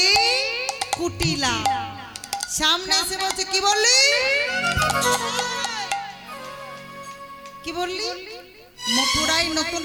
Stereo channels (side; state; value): both; identical; correlation 1.00